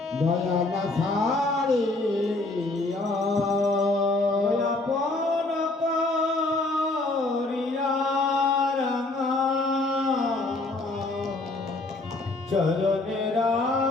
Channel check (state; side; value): quieter; right; 3.1 dB